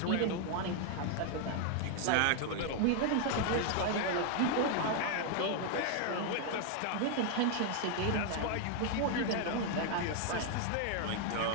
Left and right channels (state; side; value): different; both; correlation 0.00